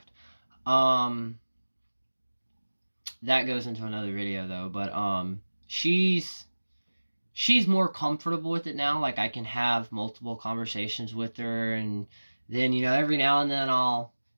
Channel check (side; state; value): both; inverted; correlation -1.00